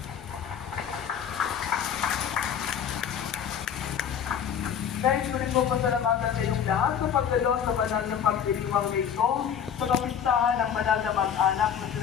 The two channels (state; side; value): quieter; right; 8.2 dB